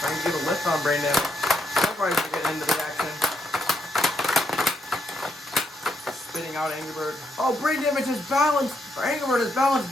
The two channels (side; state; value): both; normal; correlation 0.78